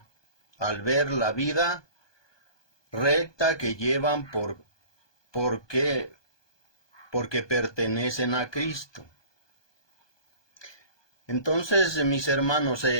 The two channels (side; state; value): right; late; 1.2 ms